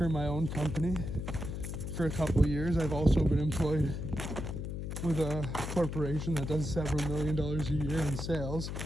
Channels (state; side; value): noise; left; hum, 5 dB below the sound